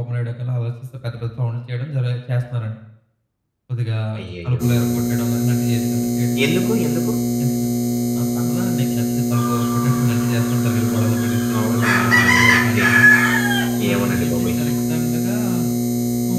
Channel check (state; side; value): identical; both; correlation 1.00